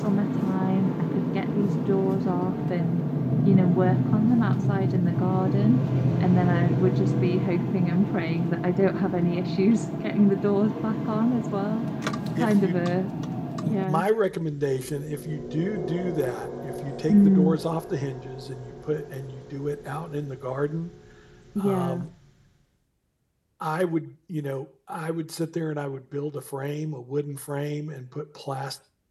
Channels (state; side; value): identical; both; correlation 1.00